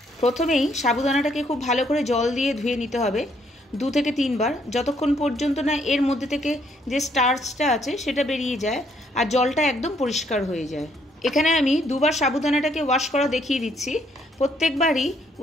প্রথমেই সাবুদানাটাকে খুব ভালো করে জল দিয়ে ধুয়ে নিতে হবে 2 থেকে 3 বার, যতক্ষণ পর্যন্ত না এর মধ্যে থেকে যে স্টার্চটা আছে সেটা বেরিয়ে যায় আর জলটা একদম পরিষ্কার হয়ে যায়। এখানে আমি 2 বার সাবুদানাটাকে ওয়াশ করা দেখিয়ে দিচ্ছি। প্রত্যেকবারই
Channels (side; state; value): both; normal; correlation 0.69